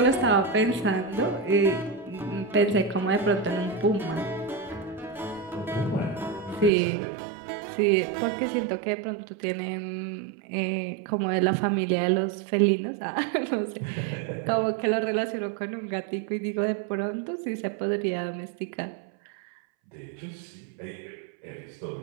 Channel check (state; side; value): drops out; left; at 6.7 s